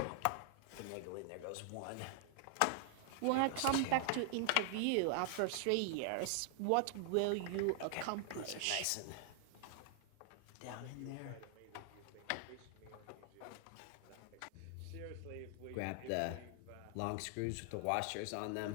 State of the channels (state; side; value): different; both; correlation 0.00